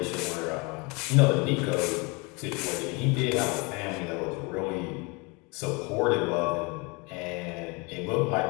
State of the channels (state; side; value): quieter; right; 28.7 dB